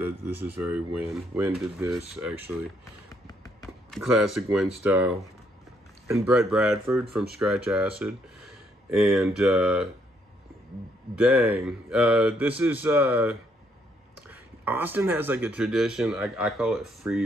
is very Win. Win did this actually, classic Win style. And Brett Bradford from Scratch Acid, and this is Austin has like a tradition. I call it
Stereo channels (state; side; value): normal; both; correlation 0.71